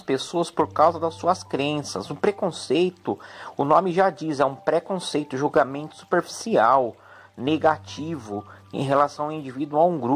pessoas por causa das suas crenças. O preconceito, o nome já diz, é um preconceito, julgamento superficial, negativo em relação ao indivíduo, a um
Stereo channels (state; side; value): identical; both; correlation 1.00